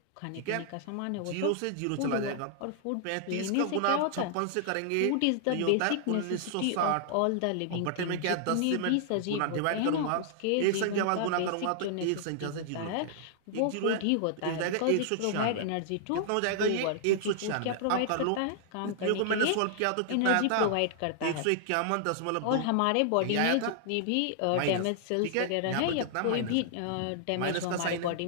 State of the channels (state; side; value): different; both; correlation -0.01